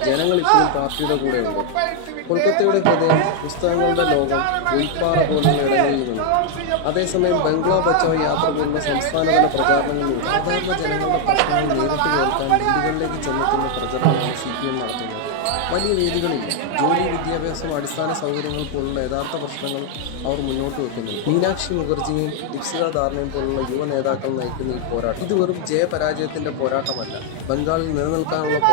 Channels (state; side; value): different; both; correlation 0.00